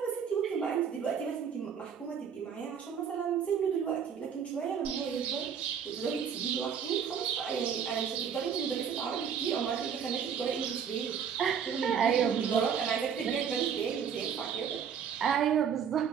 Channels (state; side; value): quieter; left; 7.5 dB